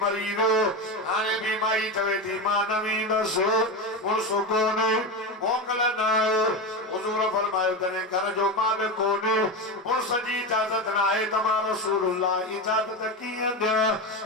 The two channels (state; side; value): normal; both; correlation 0.19